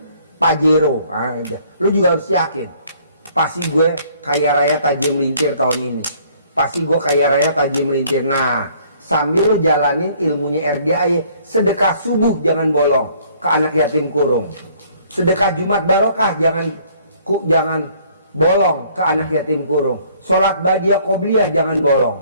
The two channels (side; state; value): both; inverted; correlation -0.60